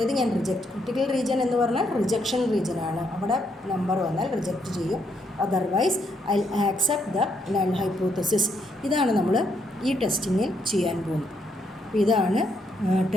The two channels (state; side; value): normal; both; correlation 0.75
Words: ഞാൻ ക്രിട്ടിക്കൽ റീജിയൻ എന്ന് പറഞ്ഞാൽ റിജക്ഷൻ റീജിയൻ ആണ്. അവിടെ നമ്പർ വന്നാൽ റിജക്റ്റ് ചെയ്യും. Otherwise I accept the null hypothesis. ഇതാണ് നമ്മൾ ഈ ടെസ്റ്റിങ്ങിൽ ചെയ്യാൻ പോകുന്നത്. അപ്പോൾ ഇതാണ്